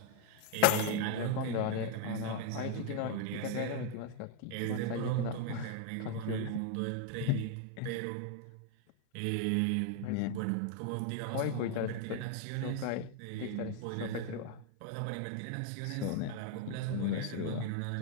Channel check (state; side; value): different; both; correlation 0.00